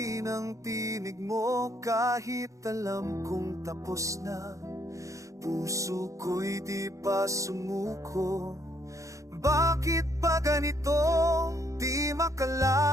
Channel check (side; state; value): left; late; 0.15 ms